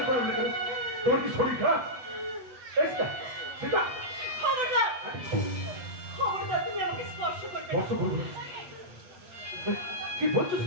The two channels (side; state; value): left; late; 7.9 ms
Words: করেন না, তোমার কি শরীর খারাপ? সেটা খবরদার, খবরদার, তুমি আমাকে স্পর্শ করবে না। স্পর্শ করবো না? কি বলছো